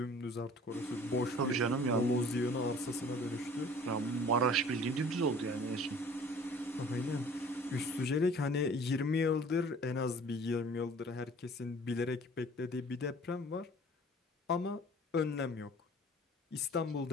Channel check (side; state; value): both; normal; correlation 0.49